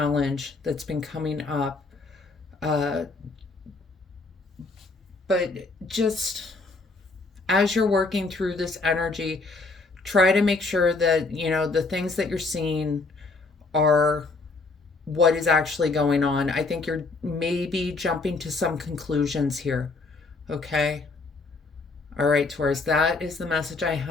that's been coming up. But just as you're working through this energy, try to make sure that, you know, the things that you're seeing are what is actually going on. I think you're maybe jumping to some conclusions here. Okay? All right, Taurus, that is the message I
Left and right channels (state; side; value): quieter; right; 3.7 dB